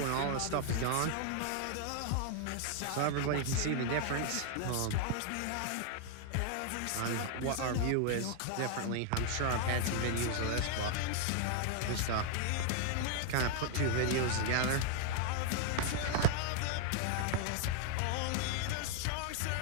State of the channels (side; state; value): both; different; correlation 0.00